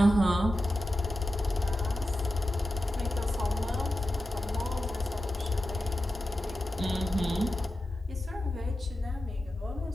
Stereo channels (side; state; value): both; normal; correlation 0.92